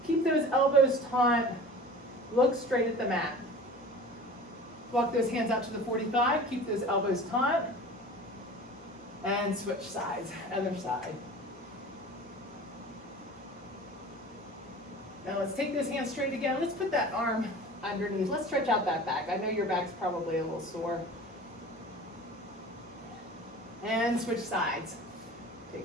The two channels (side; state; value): both; normal; correlation 0.39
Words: keep those elbows taut, look straight at the mat. Walk those hands out to the 45, keep those elbows taut, and switch sides, other side. Now let's take those hands straight again. Let's put that arm underneath. Let's stretch out that back. I know your back's probably a little sore. And switch sides.